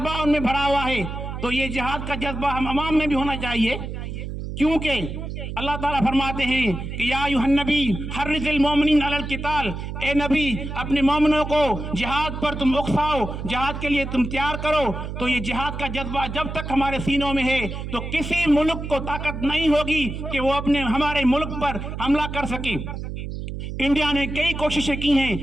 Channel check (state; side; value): noise; right; hum, 7 dB below the sound